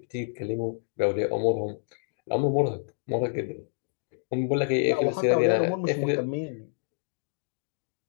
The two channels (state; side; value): silent; right; digital silence